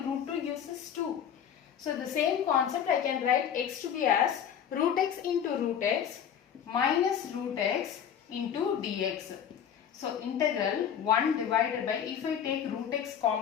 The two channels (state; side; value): quieter; right; 8.7 dB